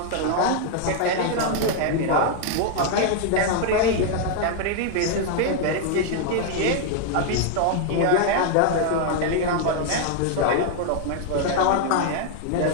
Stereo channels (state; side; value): different; both; correlation 0.00